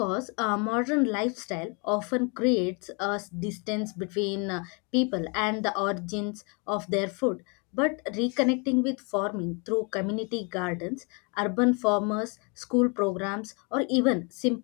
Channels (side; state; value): right; quieter; 33.5 dB